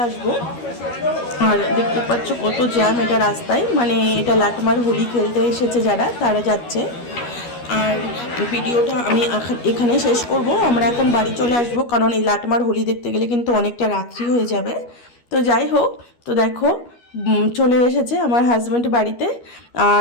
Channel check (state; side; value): late; right; 13 ms